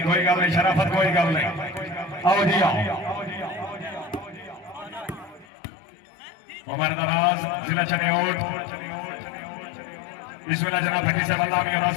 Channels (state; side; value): drops out; right; at 5.5 s